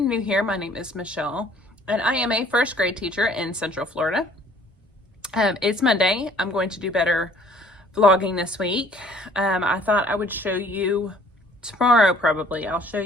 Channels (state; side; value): normal; both; correlation 0.56